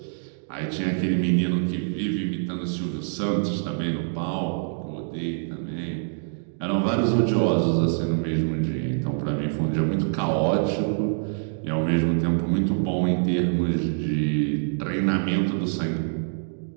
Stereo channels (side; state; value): left; silent; digital silence